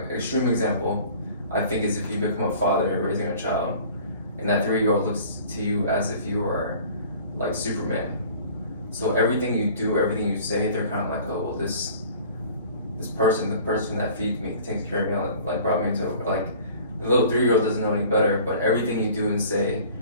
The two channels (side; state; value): both; inverted; correlation -0.47